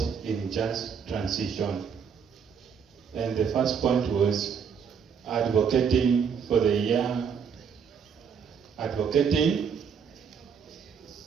in just transition? And the first point was advocating for the young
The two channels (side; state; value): left; quieter; 6.8 dB